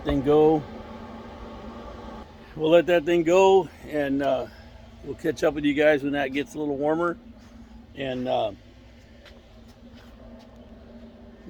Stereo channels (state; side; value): identical; both; correlation 1.00